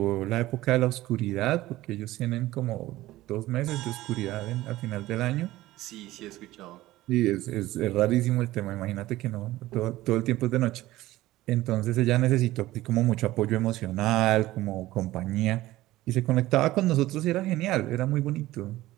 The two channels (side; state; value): left; quieter; 16.7 dB